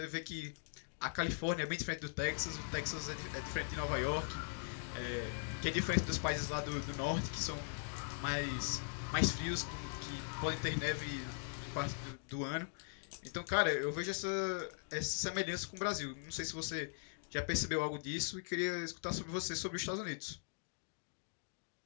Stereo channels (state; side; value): silent; right; digital silence